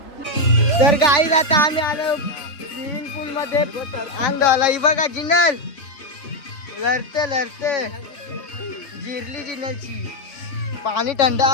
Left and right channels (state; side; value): late; right; 3.4 ms